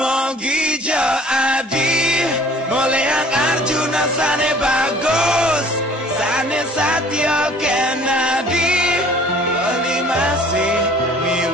jo adi mulai ang Arjuna sane bagus sane Satya Kennedy bali masih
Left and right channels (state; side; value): normal; both; correlation 0.52